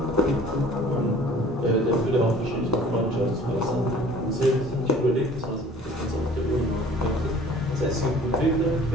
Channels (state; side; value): normal; both; correlation 0.49